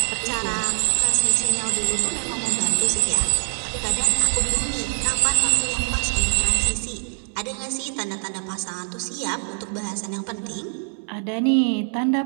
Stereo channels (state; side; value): silent; left; 63 dB below the other